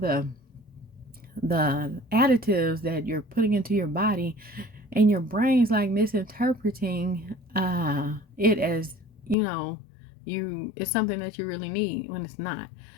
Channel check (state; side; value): drops out; right; at 9.3 s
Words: additives that you're putting into your body, and your brain's like misinterpreting it as it's something that you really need when it's not.